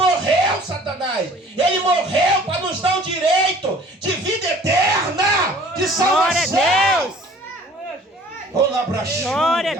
Satanás. Ele morreu para nos dar o direito de vida eterna, de salvação. Glória a Deus. Glória a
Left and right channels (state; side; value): normal; both; correlation 0.51